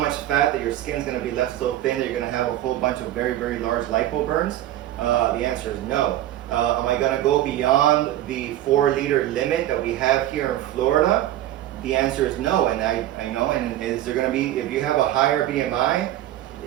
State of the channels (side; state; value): left; quieter; 13.6 dB